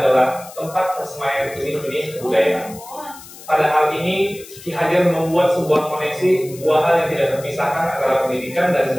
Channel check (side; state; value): left; noise; hiss, 18 dB below the sound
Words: tempat persemaian benih-benih kebudayaan. Pada hal ini, Ki Hajar membuat sebuah koneksi dua hal yang tidak terpisahkan antara pendidikan dan